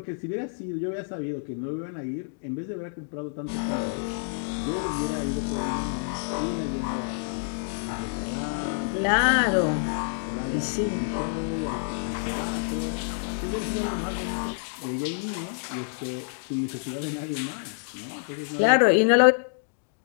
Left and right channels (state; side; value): silent; right; digital silence